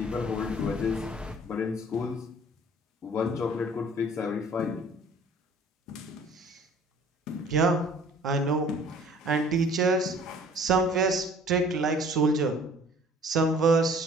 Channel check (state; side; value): normal; both; correlation 0.52